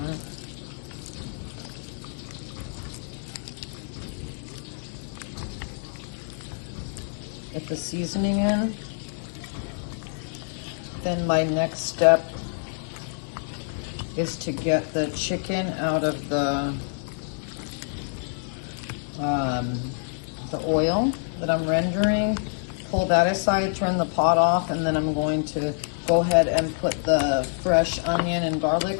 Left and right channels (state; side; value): silent; right; digital silence